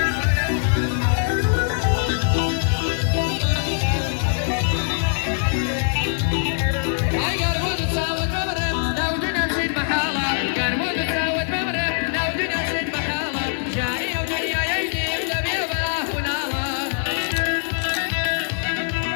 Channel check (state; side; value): silent; right; digital silence